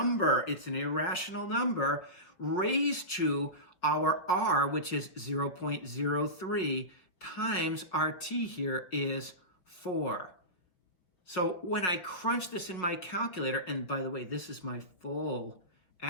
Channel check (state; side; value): late; right; 5.7 ms